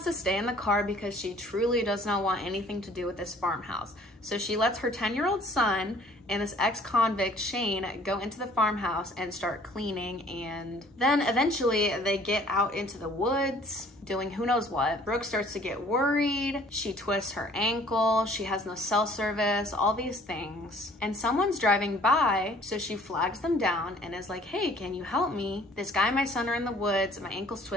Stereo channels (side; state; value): both; normal; correlation 0.55